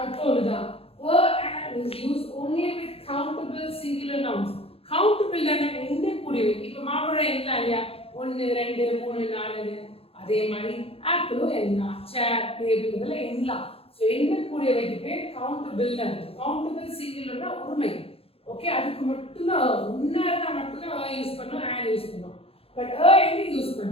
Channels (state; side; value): late; right; 0.28 ms